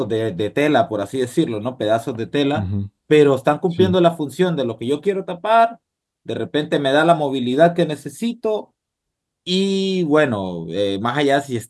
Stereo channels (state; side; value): identical; both; correlation 1.00